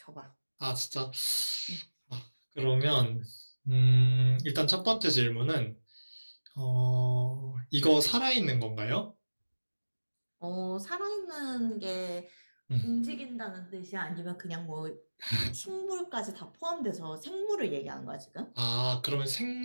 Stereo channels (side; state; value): both; inverted; correlation -1.00